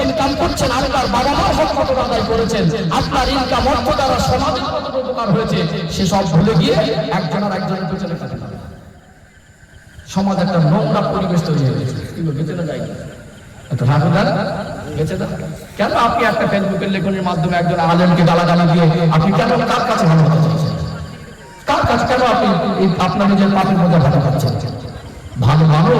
ইনকাম করছেন, আপনার বাবা মার হক কতটা আদায় করেছেন, আপনার ইনকাম অর্থ দ্বারা সমাজের কতটা উপকার হয়েছে, সেসব ভুলে গিয়ে একজন আর একজনের পেছনে কাটে না। সমাজ একটা নোংরা পরিবেশ তৈরি হয়ে গেছে, গেছে না যায়নি একটা রাগুদার গেছে না। কেন আপনি একটা ফেসবুকের লেখনের মাধ্যমে একজন আলেমকে গালাগালি দিয়ে আপনি কেন কার কাছে ভালো হতে চাইছেন? কার কাছে কেন আপনি আপনার নিজের পাপের মধ্যে ভালো পাচ্ছেন? ভালো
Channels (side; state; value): both; identical; correlation 1.00